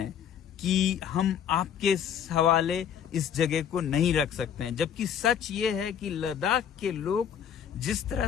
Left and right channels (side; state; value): right; quieter; 8.7 dB